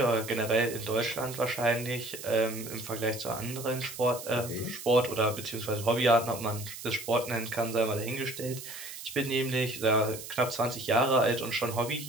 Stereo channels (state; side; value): noise; right; hiss, 11 dB below the sound